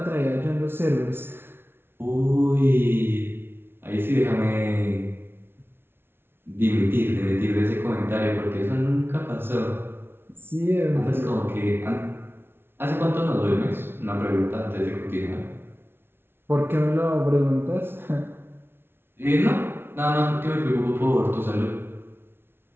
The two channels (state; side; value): late; left; 0.11 ms